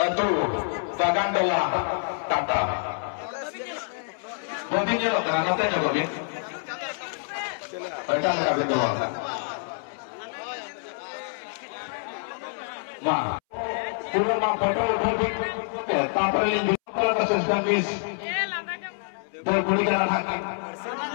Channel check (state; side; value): silent; right; 60 dB below the other